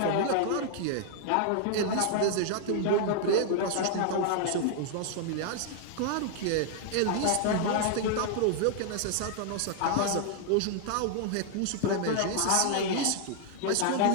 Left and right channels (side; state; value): both; different; correlation 0.00